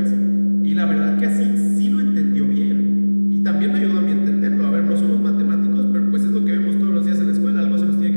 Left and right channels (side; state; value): both; inverted; correlation -1.00